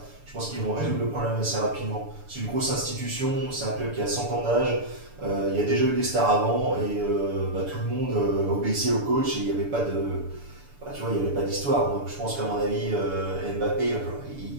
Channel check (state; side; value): late; left; 6.9 ms